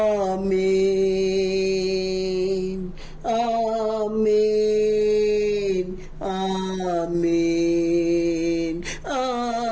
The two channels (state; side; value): identical; both; correlation 1.00